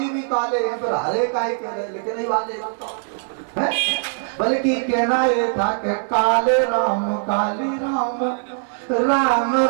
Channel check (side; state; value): left; silent; 58 dB below the other